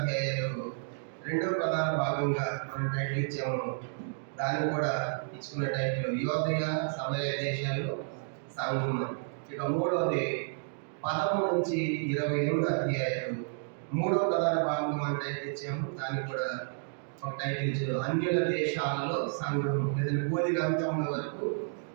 రెండవ ప్రధాన భాగంగా మనం టైటిల్ ఇచ్చాము. దాన్ని కూడా ఇచ్చుకున్న టైటిల్ యోదయ సమరయ దేశాల్లో సంఘం అని. ఇక మూడవది 13 నుంచి 28 అధ్యాయాలు మూడవ ప్రధాన భాగంగా మనం టైటిల్ ఇచ్చాము. దాన్ని కూడా ఒక టైటిల్ ఇచ్చారు అన్యుల దేశాలలో సంఘం, లేదంటే బోధి అంత్యముల వరకు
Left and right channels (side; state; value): left; silent; digital silence